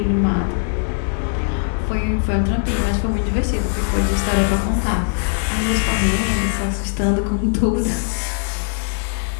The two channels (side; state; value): right; silent; digital silence